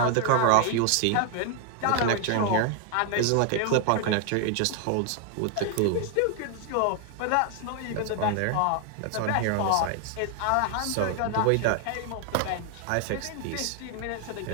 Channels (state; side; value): different; both; correlation 0.00